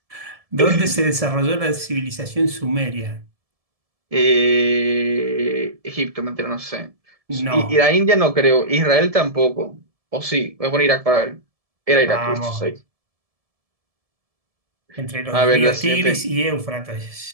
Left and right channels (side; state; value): left; late; 1.7 ms